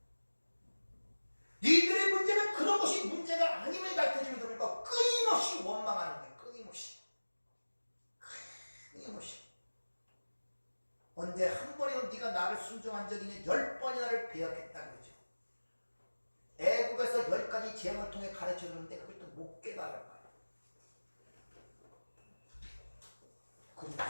니들의 문제는 그런 것이 문제가 아님을 가르쳐주면 되니까 끊임없이 원망하는 거예요. 끊임없이. 언제 한 번이라도 네가 나를 순종한 적이 있냐? 10번이나 나를 배역했다는 거죠. 애국에서 10가지 재앙을 통해 가르쳐주는데 그걸 또 못 깨달은 거예요.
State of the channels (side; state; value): both; inverted; correlation -1.00